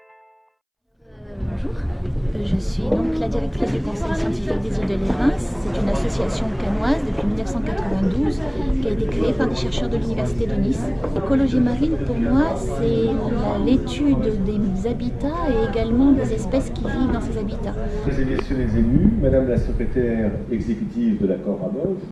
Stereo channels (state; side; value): identical; both; correlation 1.00